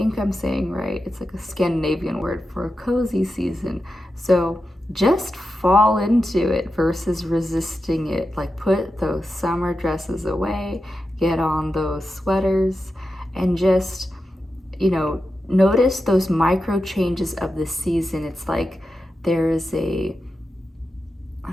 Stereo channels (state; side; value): normal; both; correlation 0.90